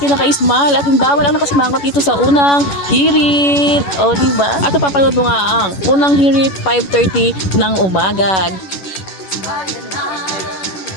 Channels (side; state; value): right; late; 11 ms